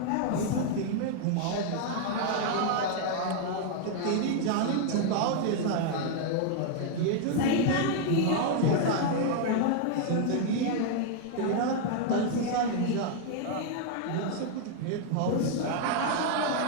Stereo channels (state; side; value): different; both; correlation 0.00